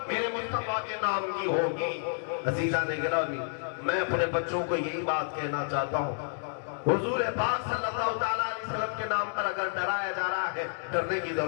میرے مصطفیٰ کے نام کی ہوگی۔ عزیزان گرامی، میں اپنے بچوں کو یہی بات کہنا چاہتا ہوں، حضور پاک صلی اللہ علیہ وسلم کے نام پر اگر ڈرایا جا رہا ہے، ڈرنے کی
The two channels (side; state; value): right; silent; digital silence